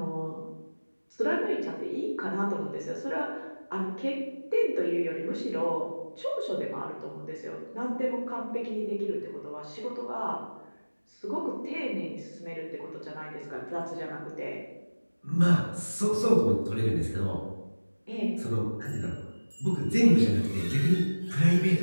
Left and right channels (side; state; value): both; inverted; correlation -1.00